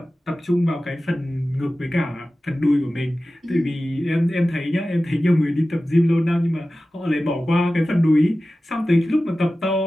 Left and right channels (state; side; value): normal; both; correlation 0.95